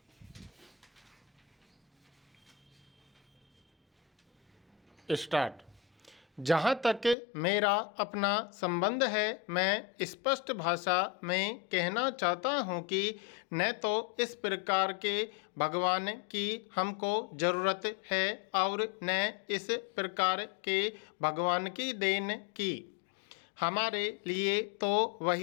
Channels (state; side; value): drops out; right; at 7.2 s